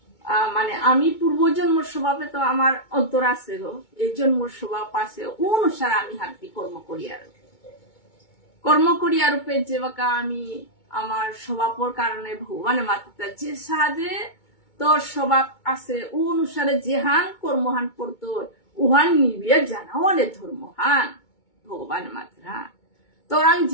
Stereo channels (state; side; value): late; right; 2.2 ms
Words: মানে আমি পূর্বজন্মর স্বভাবে তো আমার অন্তর আছে গো এই জন্মর স্বভাব আছে অনুসারে আমি হাতি কর্ম করিয়া রূপে যে বাকা আমি আমার স্বভাবর কারণে ভগবানের মাত্রা যে সাদে তোর স্বভাব আছে ও অনুসারে যেহান কর্মহান করতো উহান নিবিয়ে জানাও অনেক ধর্মহান ভগবান মাত্রা তোরাং